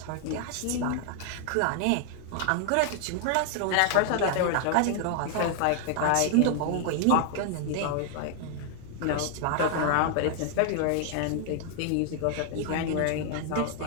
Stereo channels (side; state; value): both; different; correlation 0.00